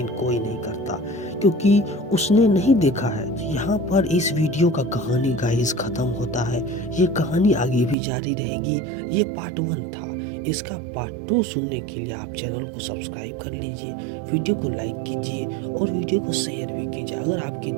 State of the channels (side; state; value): left; drops out; at 8.0 s